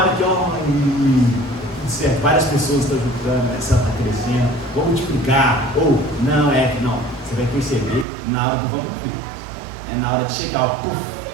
que, tudo certo, várias pessoas estão juntando, essa está crescendo, vou multiplicar, ou não. Você vai perceber na hora do vamos ver. É na hora de chegar,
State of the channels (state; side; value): drops out; left; at 8.1 s